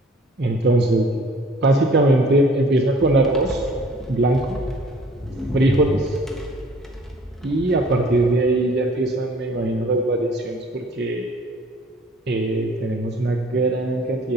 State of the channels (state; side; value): normal; both; correlation 0.52